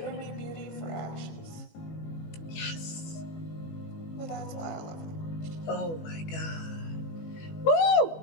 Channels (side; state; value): right; late; 18 ms